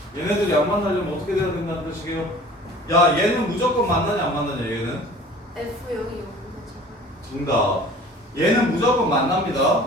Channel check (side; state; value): both; normal; correlation 0.46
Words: 얘네들이 안 만나려면 어떻게 돼야 된다는 뜻이게요? 야, 얘는 무조건 만나냐 안 만나냐 얘는? F0이 0이잖아. 정답. 얘는 무조건